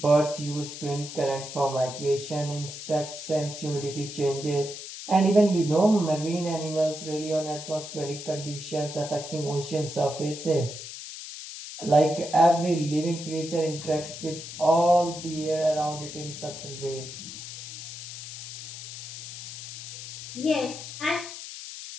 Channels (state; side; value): noise; left; hiss, 10 dB below the sound